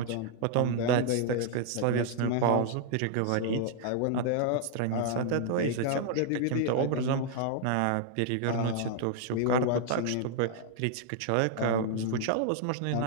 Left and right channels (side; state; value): both; different; correlation 0.00